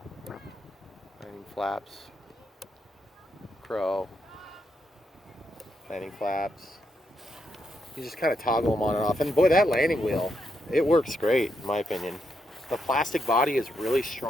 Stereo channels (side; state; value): both; normal; correlation 0.81